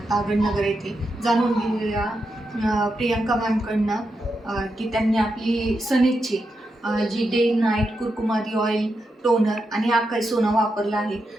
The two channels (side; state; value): both; normal; correlation 0.86